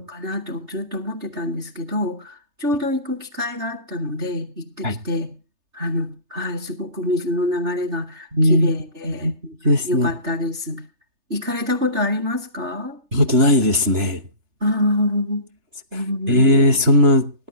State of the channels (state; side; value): late; left; 3.3 ms